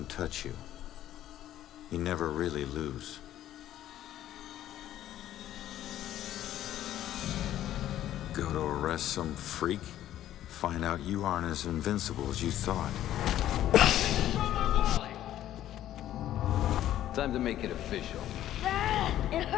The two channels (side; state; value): right; quieter; 12.5 dB